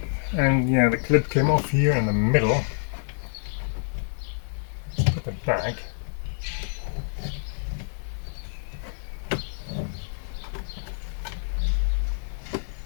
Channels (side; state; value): right; silent; digital silence